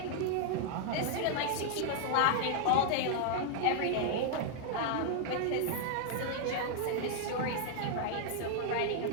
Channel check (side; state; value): both; different; correlation -0.01